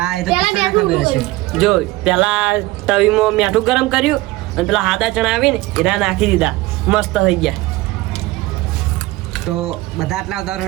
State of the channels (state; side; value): quieter; left; 19.4 dB